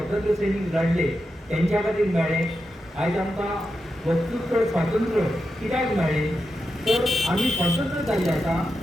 सैनिक लढले त्यांच्या खातीर मेळ्ळे. आयज आमकां वक्तृत्व स्वातंत्र्य कित्याक मेळ्ळें तर आमी स्वतंत्र जाल्ले आसा,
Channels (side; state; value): both; normal; correlation 0.88